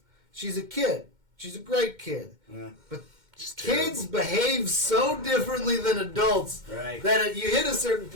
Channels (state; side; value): late; left; 2.1 ms